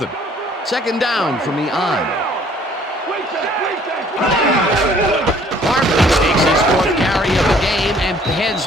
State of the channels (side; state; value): both; normal; correlation 0.58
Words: Second down from the on. Barber takes his 4th carry of the game and heads